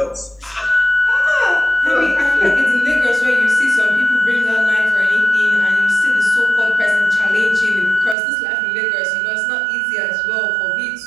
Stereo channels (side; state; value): left; drops out; at 8.2 s